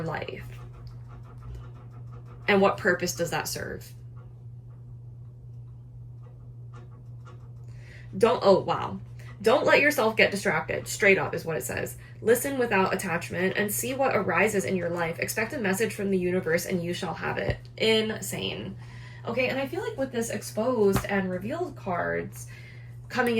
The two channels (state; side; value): identical; both; correlation 1.00